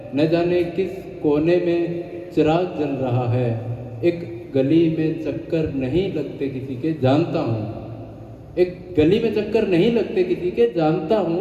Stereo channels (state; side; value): identical; both; correlation 1.00